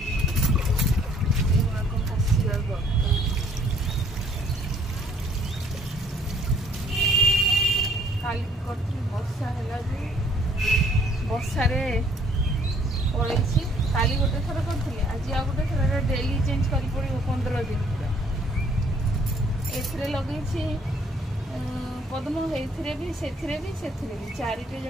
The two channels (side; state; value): both; normal; correlation 0.60